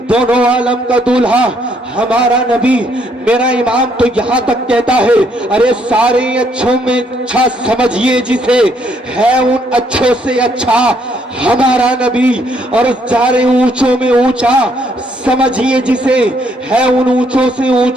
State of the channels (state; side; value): normal; both; correlation 0.70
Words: دونوں عالم کا دولہا ہمارا نبی میرا امام تو یہاں تک کہتا ہے ارے سارے اچھوں میں اچھا سمجھیے جسے ہے ان اچھوں سے اچھا ہمارا نبی، اور سارے اونچوں میں اونچا سمجھیے جسے ہے ان اونچوں سے